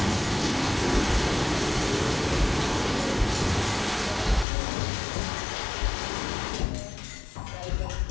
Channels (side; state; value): right; drops out; at 4.5 s